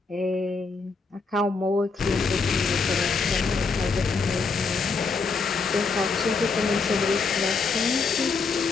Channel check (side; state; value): right; quieter; 4.5 dB